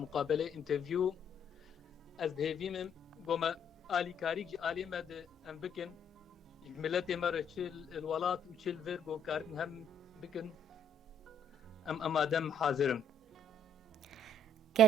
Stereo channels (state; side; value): normal; both; correlation 0.65